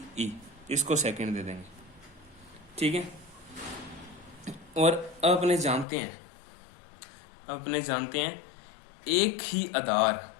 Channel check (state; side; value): drops out; right; at 5.9 s